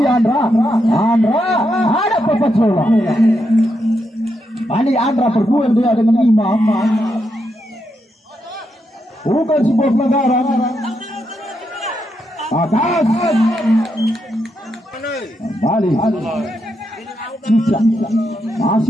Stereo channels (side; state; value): both; normal; correlation 0.82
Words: Andra ada Papat Zola. Kali Andra berduel dia dengan Imam. Bukan sebuah pelanggaran. Atas kembali Cicak,